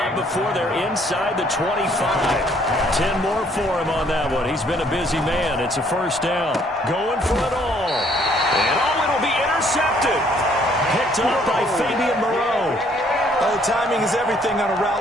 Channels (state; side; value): normal; both; correlation 0.64